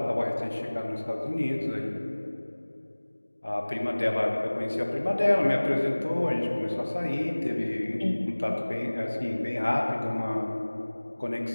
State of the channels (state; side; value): inverted; both; correlation -1.00